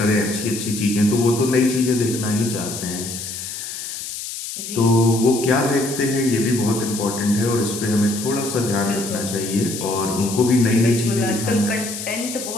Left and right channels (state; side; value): noise; left; hiss, 8 dB below the sound